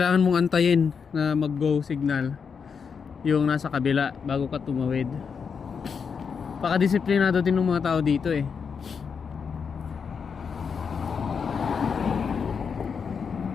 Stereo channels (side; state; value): right; quieter; 6.2 dB